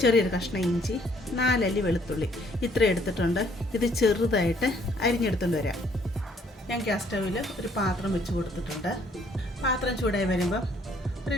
ചെറിയൊരു കഷ്ണം ഇഞ്ചി, 4 അല്ലി വെളുത്തുള്ളി, ഇത്ര എടുത്തിട്ടുണ്ട്. ഇത് ചെറുതായിട്ട് അരിഞ്ഞെടുത്തുകൊണ്ട് വരാം. ഞാൻ ഗ്യാസ് സ്റ്റൗവിൽ ഒരു പാത്രം വെച്ച് കൊടുത്തിട്ടുണ്ട്. പാത്രം ചൂടായി വരുമ്പോൾ ഒരു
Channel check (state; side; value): normal; both; correlation 0.64